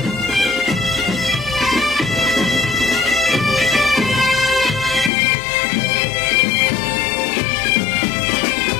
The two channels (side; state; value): right; drops out; at 5.1 s